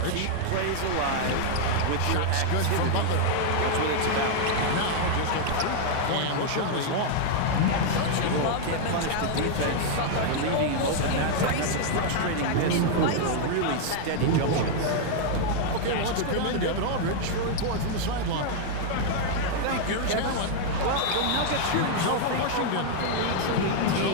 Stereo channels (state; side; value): different; both; correlation 0.00